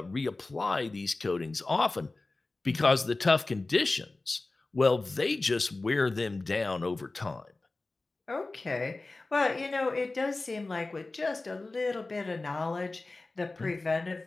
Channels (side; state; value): right; quieter; 3.3 dB